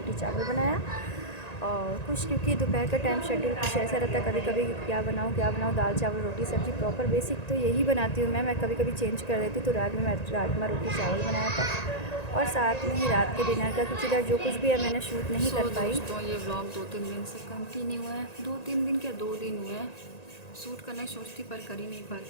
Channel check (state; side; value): late; right; 1.9 ms